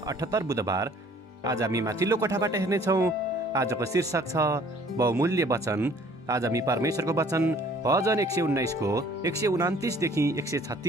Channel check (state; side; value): normal; both; correlation 0.55